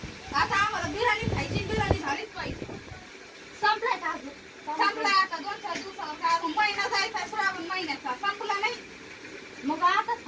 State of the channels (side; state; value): both; identical; correlation 1.00